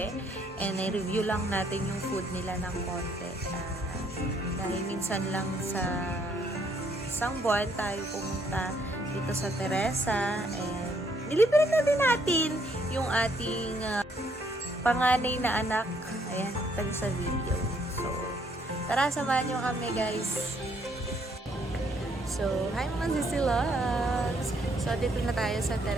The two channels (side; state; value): both; normal; correlation 0.68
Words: And i-review lang natin yung food nila ng konti. Dahil minsan lang sa isang buwan tayo pumunta dito sa Teresa. And nilibre na din natin yung ating panganay na anak. Ayan, tayo sa video. So, tara, samahan nyo kami guys. So, hi mga sisilogs! So, dito na tayo sa